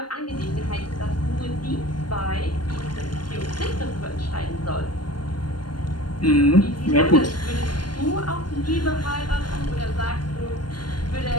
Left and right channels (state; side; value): late; right; 0.71 ms